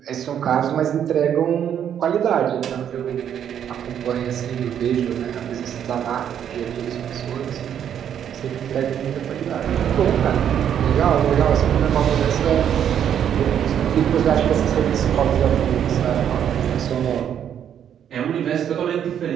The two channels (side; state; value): left; quieter; 9.3 dB